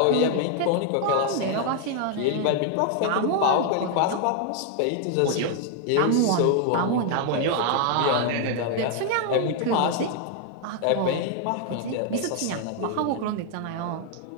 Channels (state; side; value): different; both; correlation 0.00